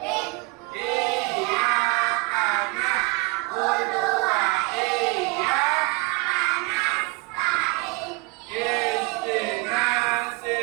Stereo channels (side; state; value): left; quieter; 27.1 dB